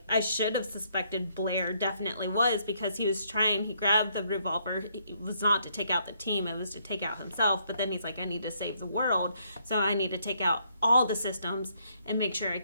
I should have suspected Blair definitely was, because he grabbed the revolver. It was not to take out the team, it was to take out himself. But then he's like, I need to save the world, so I need to take out all the systems and make sure I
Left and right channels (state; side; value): inverted; both; correlation -0.71